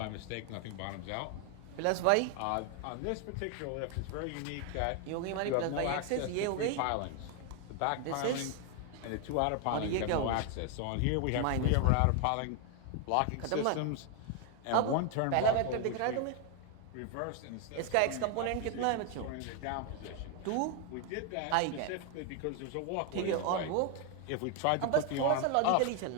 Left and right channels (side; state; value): both; different; correlation 0.01